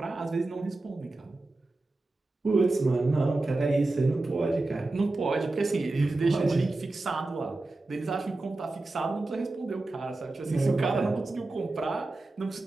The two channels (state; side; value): quieter; left; 3.1 dB